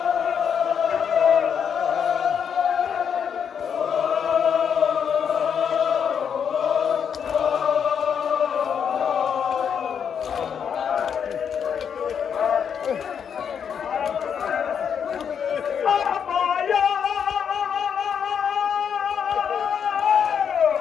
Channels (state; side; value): quieter; right; 7.5 dB